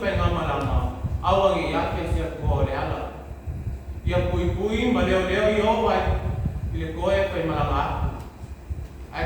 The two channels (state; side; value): identical; both; correlation 1.00